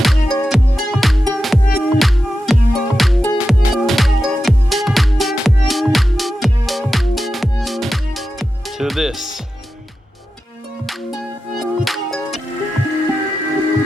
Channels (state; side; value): normal; both; correlation 0.91